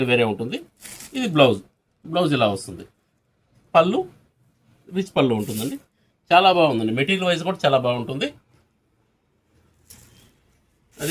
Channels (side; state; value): both; identical; correlation 1.00